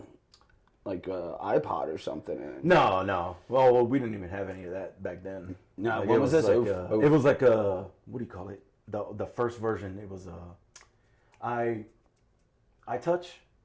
iPod or something in it. No. Well, we didn't even have any of that back then. No, what was this? It was like a, what do you call it? The first version, it was iTouch.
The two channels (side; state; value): both; identical; correlation 1.00